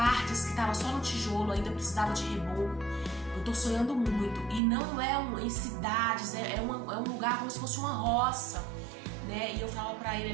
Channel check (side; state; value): left; drops out; at 4.6 s